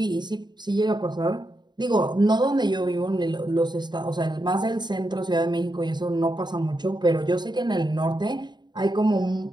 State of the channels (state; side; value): late; left; 0.21 ms